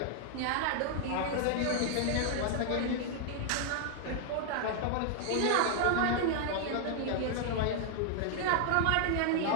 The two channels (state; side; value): different; both; correlation 0.00